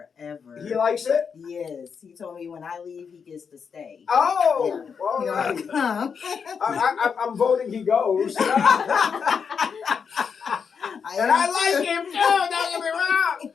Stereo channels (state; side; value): quieter; right; 6.3 dB